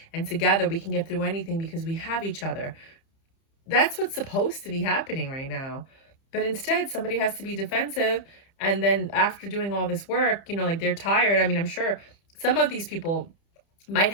And together we can get through anything because we have each other. That's what's supposed to be happening right now. But instead, somebody has to be defensive. And then after doing all this work, you know, like they're tired. I mean, I'm sure some of these people might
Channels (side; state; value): right; late; 30 ms